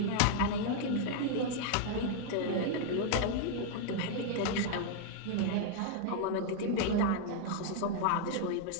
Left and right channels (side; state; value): both; different; correlation 0.00